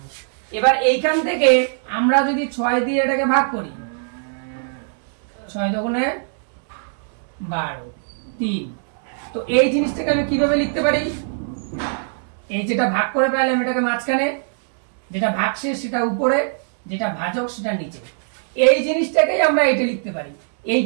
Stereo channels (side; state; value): left; silent; 65 dB below the other